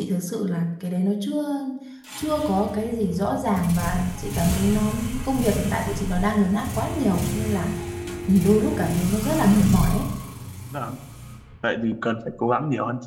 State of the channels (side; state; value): both; identical; correlation 1.00